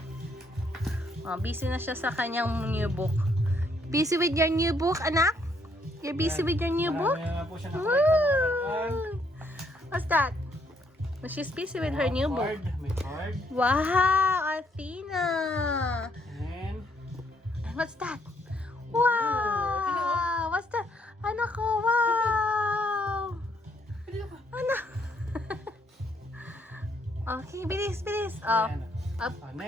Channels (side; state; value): both; normal; correlation 0.70